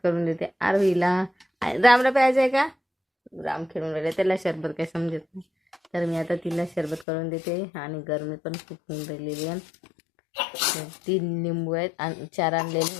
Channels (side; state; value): right; drops out; at 7.1 s